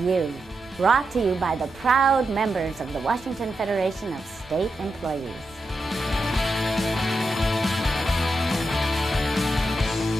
brought to you by the proud members of the Washington Federation of State Employees.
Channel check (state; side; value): normal; both; correlation 0.87